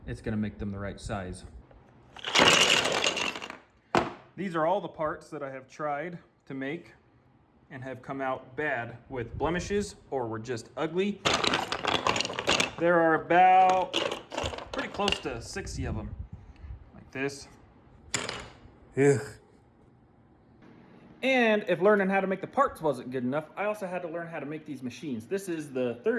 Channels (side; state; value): both; identical; correlation 1.00